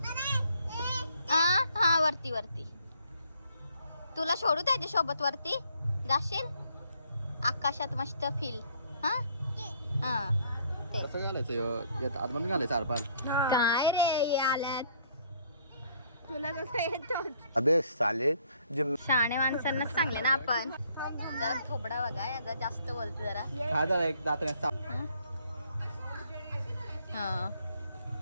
हा वरती वरती. तुला सोडू त्याच्या सोबत वरती जाशील. आकाशात मस्त फील. हा हा ते कसं घालायचं यात आतमध्ये घालायचं आरपार. काय रे आल्यात. तुला कसं येतो? अबे साले शहाणे माणसांनाच सांगले ना आपण. जरा थोबडा बघा याचा जास्त बोलतो जरा. खा जरा एक दात हा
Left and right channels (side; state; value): both; inverted; correlation -0.64